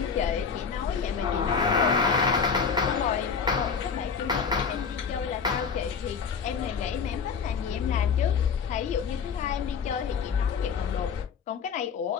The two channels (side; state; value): right; quieter; 6.0 dB